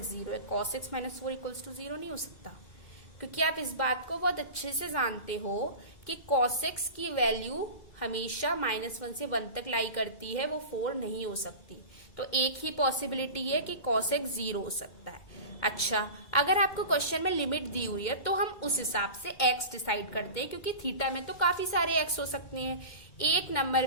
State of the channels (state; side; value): late; right; 2.3 ms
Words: 0 है। cos x minus 4 equals to 0 नहीं हो सकता, क्योंकि आप इस बात को बहुत अच्छे से जानते हो कि cos x की वैल्यू हमेशा -1 से 1 तक लाई करती है, वो 4 नहीं हो सकती। तो एक ही पॉसिबिलिटी है कि cos x 0 हो सकता है। अच्छा, अगर आपको क्वेश्चन में लिमिट दी हुई है तो हम उस हिसाब से x डिसाइड करते हैं, क्योंकि थीटा में तो काफी सारे x हो सकते हैं। एक नंबर